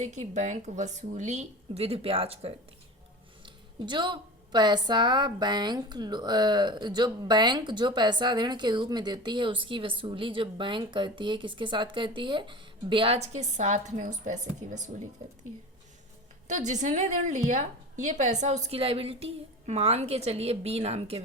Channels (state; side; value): normal; both; correlation 0.31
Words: की बैंक वसूली विद ब्याज करती है। जो पैसा बैंक जो पैसा ऋण के रूप में देती है उसकी वसूली जो बैंक करती है किसके साथ करती है? ब्याज के साथ में उस पैसे की वसूली करती है। तो जिसने ऋण लिया ये पैसा उसकी लायबिलिटी है। मान के चलिए बी नाम के